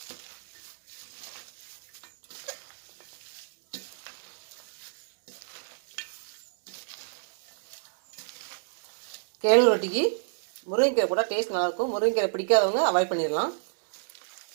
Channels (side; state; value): left; silent; digital silence